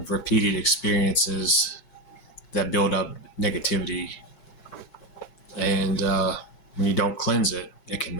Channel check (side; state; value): right; late; 4.6 ms